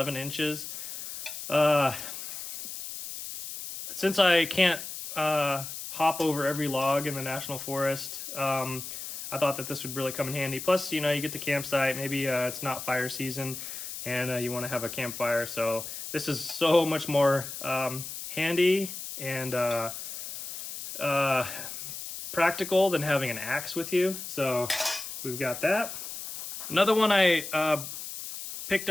inches. Since I can't hop over every log in the national forest, I thought that this would really come in handy. Plus, you know, you get to campsite, maybe it's not fire season and you want to have a campfire, so this is so much more handy and practical than having an axe with you. So we've got that. Another one I picked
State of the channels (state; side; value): noise; left; hiss, 8 dB below the sound